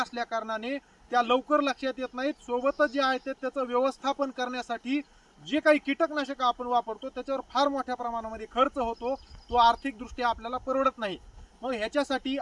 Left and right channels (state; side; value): identical; both; correlation 1.00